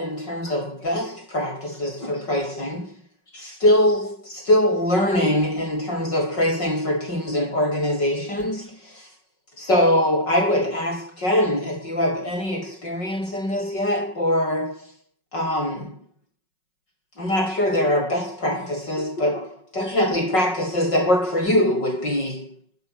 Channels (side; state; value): right; late; 5.4 ms